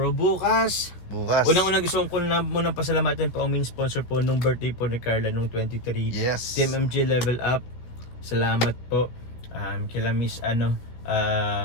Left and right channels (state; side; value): late; right; 16 ms